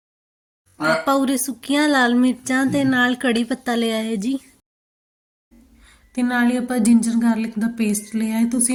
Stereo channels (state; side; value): identical; both; correlation 1.00